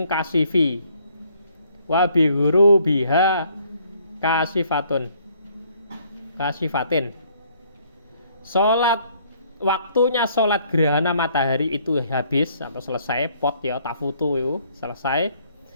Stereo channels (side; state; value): both; inverted; correlation -0.64